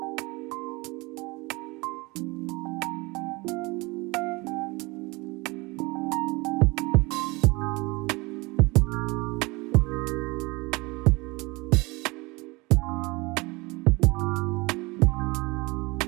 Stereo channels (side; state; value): left; quieter; 24.6 dB